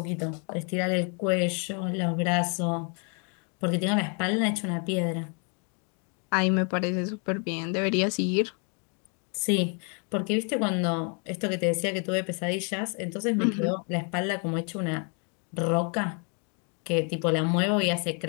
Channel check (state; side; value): quieter; right; 38.0 dB